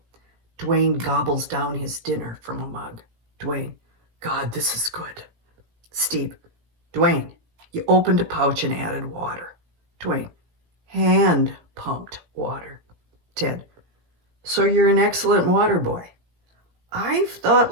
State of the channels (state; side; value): late; left; 17 ms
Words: Dwayne gobbles down his dinner from a mug. Dwayne, God, this is good. Steve, Dwayne, you opened a pouch and added water. Dwayne, hand-pumped water. Ted, so you're an excellent water boy. I've thought